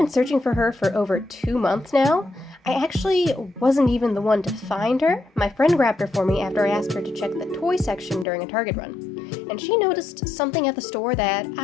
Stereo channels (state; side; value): drops out; right; at 8.2 s